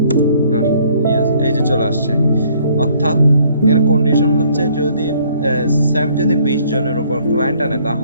yes. এই যে চলে আসছে। অর্থাৎ এর কন্ডিশন হচ্ছে যদি স্যাম যদি 20 জনের উপর ক্লায়েন্ট আনে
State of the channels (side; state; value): both; inverted; correlation -0.61